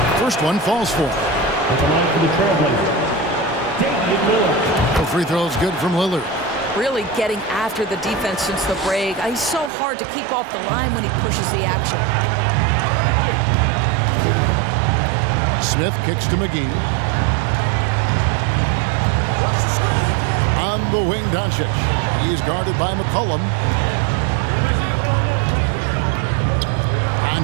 First one falls for him. At the line for the Trailblazers, Damian Lillard. The free throw is good from Lillard. Really getting after the defense since the break. He's so hard to keep off the line when he pushes the action. Smith kicks to McGee. On the wing, Doncic. He's guarded by McCollum.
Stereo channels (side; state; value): left; drops out; at 9.7 s